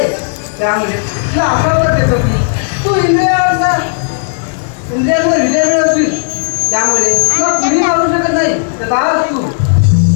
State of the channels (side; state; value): right; silent; digital silence